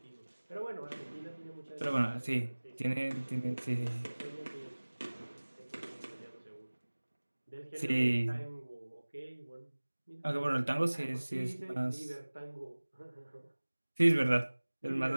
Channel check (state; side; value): inverted; both; correlation -1.00